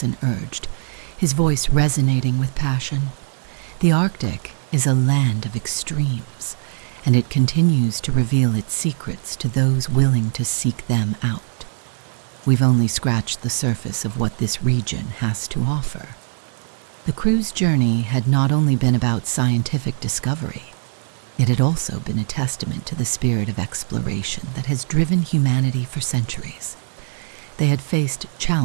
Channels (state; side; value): silent; left; 63 dB below the other